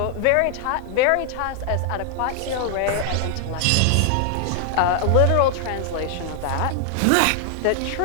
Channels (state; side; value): different; both; correlation 0.00